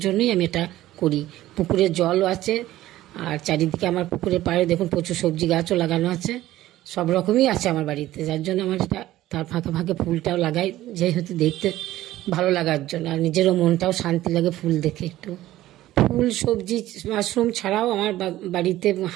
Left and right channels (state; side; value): quieter; left; 15.0 dB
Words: জন্যই আমি এটা করি। পুকুরে জলও আছে, আর চারিদিকে আমার পুকুরের পাড়ে দেখুন প্রচুর সবজি গাছও লাগানো আছে। সব রকমই আছে আমার বাড়িতে, যার জন্য আমার এটা, তার ফাঁকে ফাঁকে ফুলটাও লাগাই, যেহেতু দেখতে ভালো লাগার জন্য, আর নিজেরও মনটাও শান্তি লাগে ফুল দেখে একটু। ফুল, সবজি, মাশরুম ছাড়াও আমার বাড়িতে